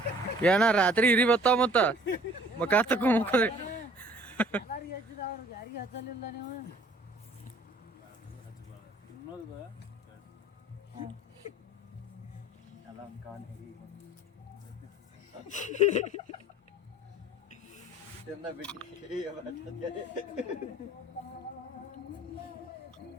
ಏನ ರಾತ್ರಿ ಇರಿ ಬರ್ತಾವ ಮತ್ತ ಮಕ ತಕೊಂಡ್ರಿ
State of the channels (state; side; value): normal; both; correlation 0.53